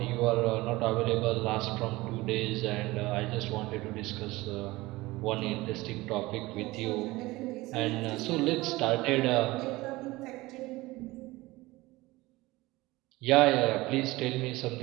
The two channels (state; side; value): quieter; left; 20.2 dB